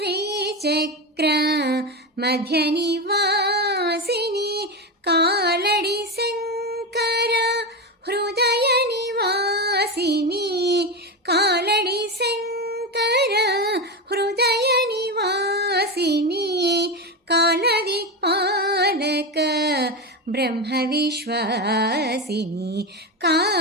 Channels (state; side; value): normal; both; correlation 0.16